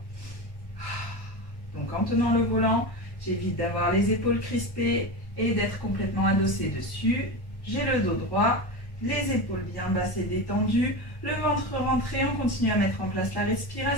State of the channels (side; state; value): right; late; 1.0 ms